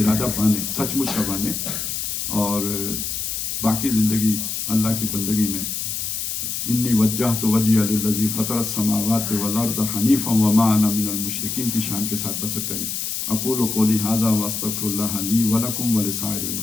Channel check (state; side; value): noise; left; hiss, 3 dB below the sound